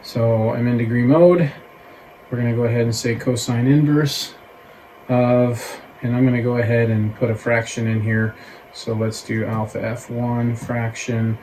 So I'm in degree mode. We're going to go ahead and say cosine inverse of, and I'm going to go ahead and put a fraction in here. So let's do alpha f1 fraction.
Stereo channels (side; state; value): both; identical; correlation 1.00